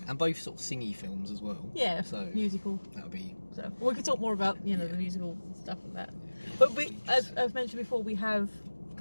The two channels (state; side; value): inverted; both; correlation -1.00